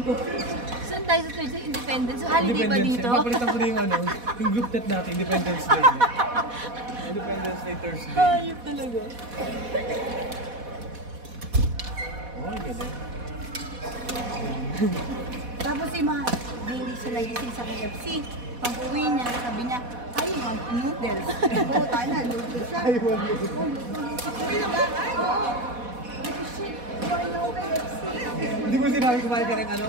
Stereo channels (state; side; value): late; left; 4.1 ms